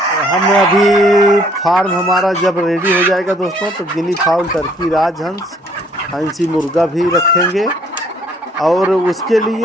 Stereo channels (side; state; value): both; normal; correlation 0.62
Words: हम अभी फार्म हमारा जब रेडी हो जाएगा दोस्तों तो गिनी फाउल, टर्की, राजहंस, हंसी मुर्गा भी रखेंगे। और उसके